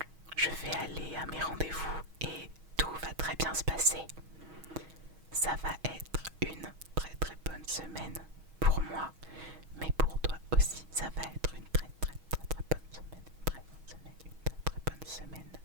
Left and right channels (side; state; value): left; late; 6.3 ms